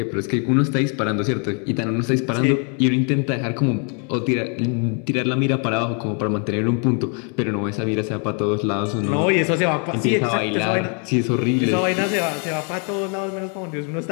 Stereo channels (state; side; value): quieter; right; 39.3 dB